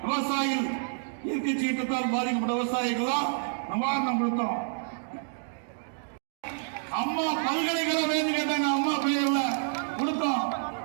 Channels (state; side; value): silent; left; digital silence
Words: விவசாயிகள் இயற்கை சீற்றத்தால் பாதிக்கப்பட்ட விவசாயிகள் நிவாரணம் கொடுத்தோம். அம்மா பல்கலைக்கழகம் வேண்டு கேட்டாங்க, அம்மா பெயர்ல கொடுத்தோம்.